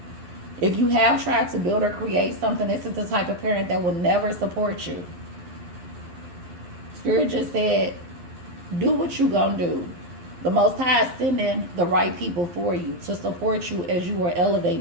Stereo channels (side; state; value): left; late; 11 ms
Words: If you have tried to build or create something, this is the type of parent that will never support you. Spirit just said, do what you gonna do. The Most High is sending the right people for you to support you as you are